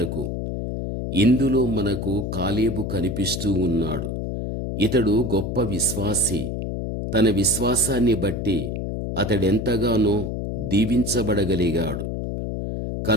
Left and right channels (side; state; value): left; noise; hum, 4 dB below the sound